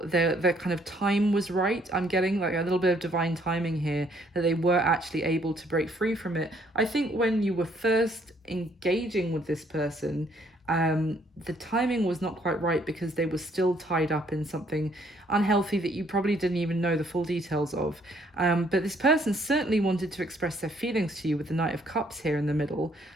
their kind of time was right. I'm getting like a little bit of divine timing here, that they were actually able to break free from it. I think when you were first engaging with this person, the timing was not quite right because they were still tied up in something unhealthy that you probably didn't even know the full details of. But this person certainly wanted to express their feelings to you with the Knight of Cups here in the middle,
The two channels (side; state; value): both; normal; correlation 0.66